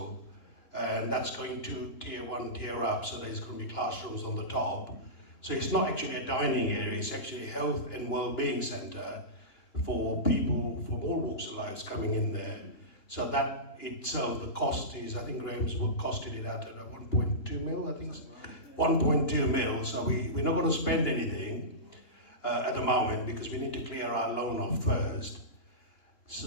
and that's going to tier 1, tier up, so there's going to be classrooms on the top. So it's not actually a dining area, it's actually a health and well-being centre for people from all walks of life coming in there. So that itself, the cost is, I think Graham's costed it at 1.2 mil, I think. 1.2 mil, so we're not going to spend anything at the moment because we need to clear our loan off first.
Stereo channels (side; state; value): right; late; 2.9 ms